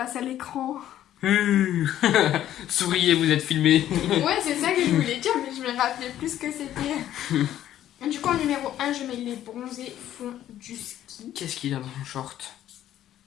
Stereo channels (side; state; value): right; quieter; 12.0 dB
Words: à l'écran. Souriez, vous êtes filmés. Ouais, c'est ça que je voulais dire, mais je me rappelais plus ce que c'était. Du coup, en numéro 1, je mets les bronzés font du ski. Qu'est-ce qu'il y a dans son short?